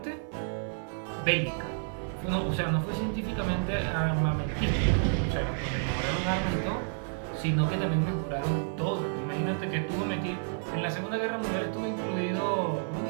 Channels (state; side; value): silent; left; 58 dB below the other